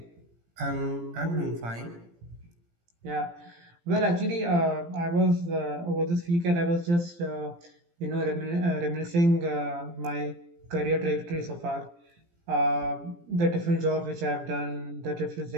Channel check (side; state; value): left; late; 17 ms